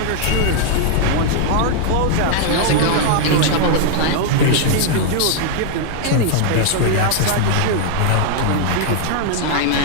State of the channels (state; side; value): different; both; correlation 0.00